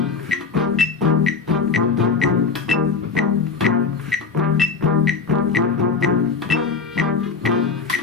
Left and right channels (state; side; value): quieter; right; 5.1 dB